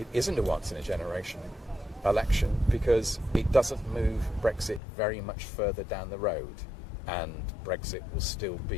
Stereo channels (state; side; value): drops out; right; at 4.8 s